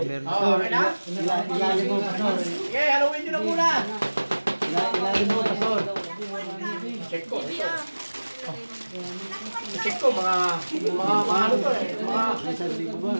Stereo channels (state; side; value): inverted; both; correlation -1.00